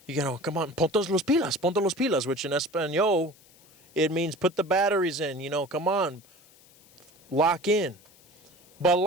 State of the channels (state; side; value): noise; left; hiss, 28 dB below the sound